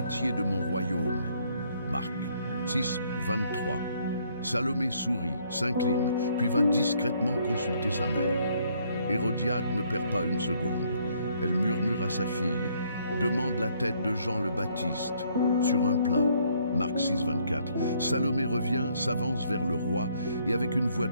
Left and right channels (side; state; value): both; inverted; correlation -0.67